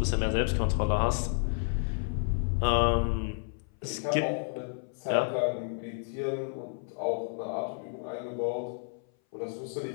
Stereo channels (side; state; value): right; silent; 57 dB below the other